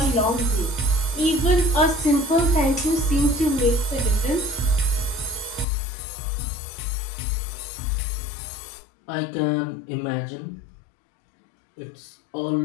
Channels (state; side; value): drops out; right; at 5.7 s